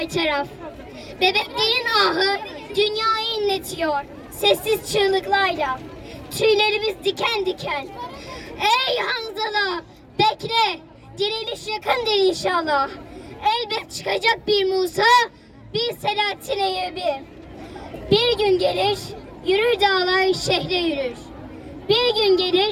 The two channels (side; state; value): both; identical; correlation 1.00